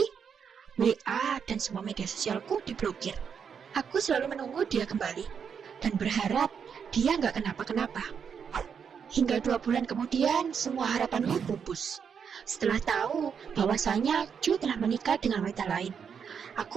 WA dan semua media sosialku diblokir. Aku selalu menunggu dia kembali, dan berharap dia nggak kenapa-kenapa. Hingga 2 bulan kemudian, semua harapanku pupus. Setelah tahu bahwasanya Ju telah menikah dengan wanita lain,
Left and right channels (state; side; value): quieter; left; 7.0 dB